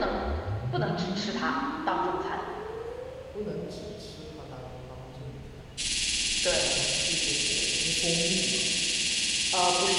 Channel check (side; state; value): both; identical; correlation 1.00